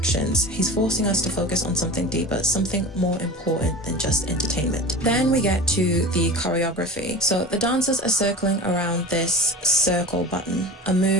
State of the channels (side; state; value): both; normal; correlation 0.33